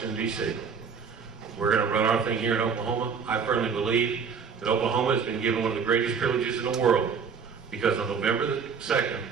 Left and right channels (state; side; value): quieter; left; 6.1 dB